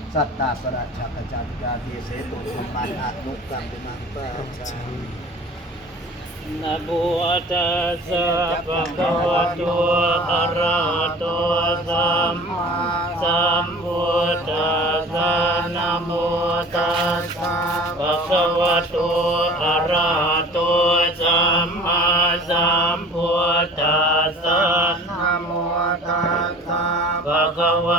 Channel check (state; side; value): normal; both; correlation 0.43